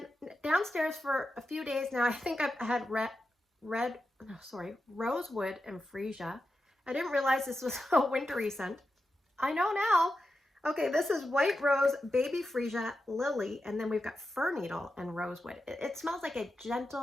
downstairs for a few days now, I think I've had rosewood and freesia. I didn't realize this was a wintry scent. I know now. Okay, this is white rose, baby freesia, lily, and then we've got fir needle and rosewood. It smells like a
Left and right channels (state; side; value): normal; both; correlation 0.89